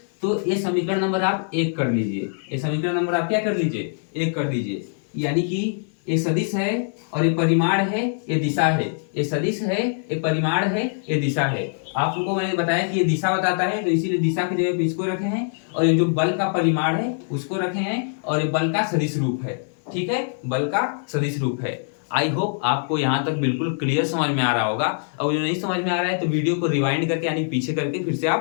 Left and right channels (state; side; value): silent; right; digital silence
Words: तो ये समीकरण नंबर आप 1 कर लीजिए, ये समीकरण नंबर आप क्या कर लीजिए, 1 कर दीजिए। यानी कि ये सदिश है और ये परिमाण है, ये दिशा है। ये सदिश है, ये परिमाण है, ये दिशा है। आपको मैंने बताया कि ये दिशा बताता है, तो इसीलिए दिशा की जगह पे इसको रखे हैं, और ये जो बल का परिमाण है उसको रखे हैं, और ये बल का सदिश रूप है। ठीक है, बल का सदिश रूप है। आई होप आपको यहाँ तक बिल्कुल क्लियर समझ में आ रहा होगा। और जो नहीं समझ में आ रहा है तो वीडियो को रिवाइंड करके यानी पीछे करके फिर से